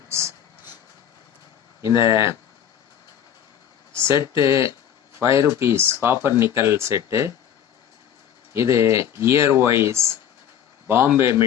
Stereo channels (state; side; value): quieter; right; 9.6 dB